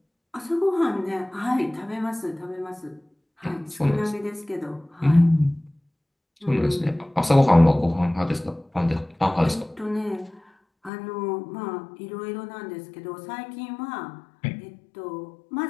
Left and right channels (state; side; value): drops out; right; at 10.9 s